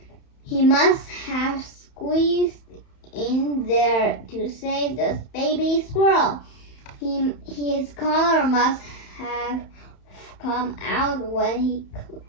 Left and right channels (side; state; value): right; late; 31 ms